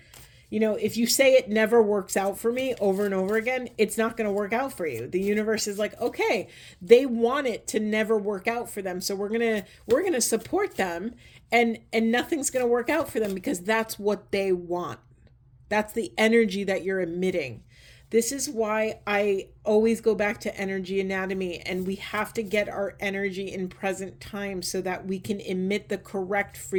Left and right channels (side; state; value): both; identical; correlation 1.00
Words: If you say it never works out for me over and over again, it's not going to work out for you. The universe is like, okay, they want it to never work out for them. So we're going to support them, and nothing's going to work out for them because that's what they want. That's the energy that you're emitting. This is why I always go back to energy anatomy, and we have to get our energy in present time so that we can emit the correct